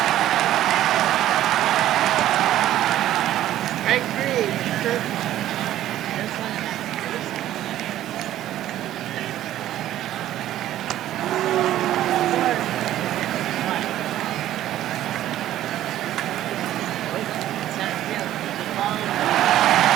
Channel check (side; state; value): left; quieter; 13.0 dB